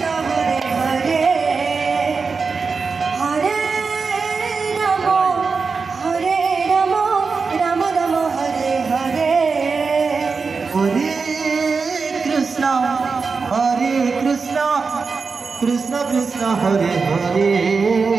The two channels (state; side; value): quieter; left; 4.8 dB